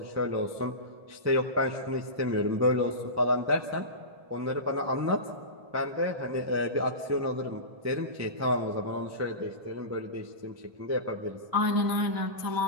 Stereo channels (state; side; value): late; left; 1.1 ms